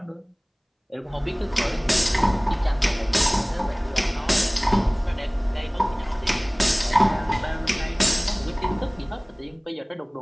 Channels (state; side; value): identical; both; correlation 1.00